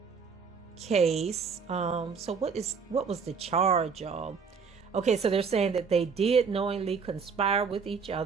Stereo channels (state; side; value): quieter; left; 5.7 dB